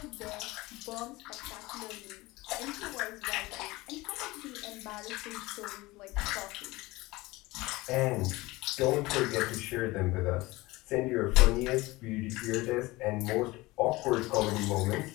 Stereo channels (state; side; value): quieter; right; 20.8 dB